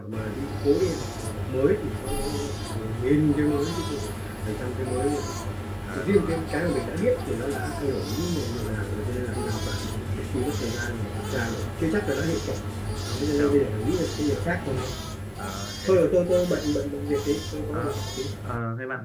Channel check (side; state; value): both; identical; correlation 1.00